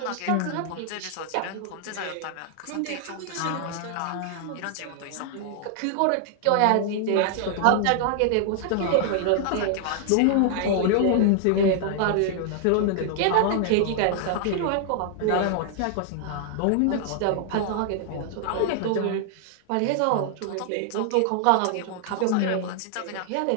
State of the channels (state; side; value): different; both; correlation 0.00